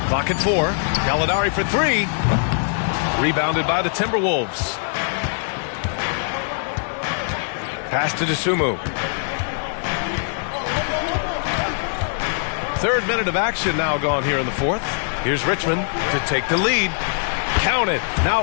clock at 4. Gallinari for 3. Rebounded by the Timberwolves. Pass to Dosunmu. Third minute of action now gone here in the fourth. Here's Richmond to take the lead. Count it.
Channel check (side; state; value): right; silent; digital silence